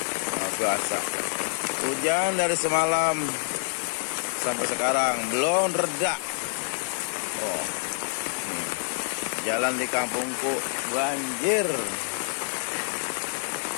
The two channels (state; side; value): silent; right; digital silence